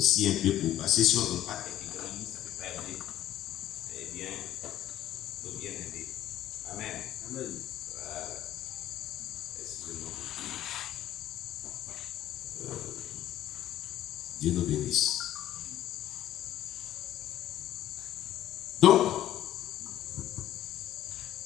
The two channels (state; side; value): quieter; right; 12.8 dB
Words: un peu pour passer si on ne donne pas quelques grandes lignes, ça ne peut pas aider. Eh bien, il faut bien aider. Amen. Amen. Voilà. Excusez-moi. Dieu nous bénisse. Donc,